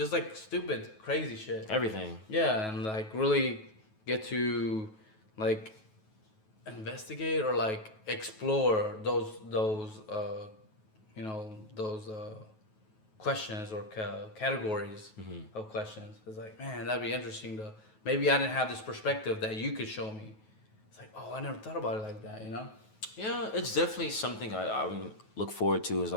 like stupid, crazy shit? Everything. Yeah, and like really get to like investigate or like explore those questions or categories of questions. It's like, man, that'd be interesting to maybe I didn't have this perspective that you could show me. It's like, oh, I never thought about it like that, you know? Yeah, it's definitely something I look forward to is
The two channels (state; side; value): late; right; 9.3 ms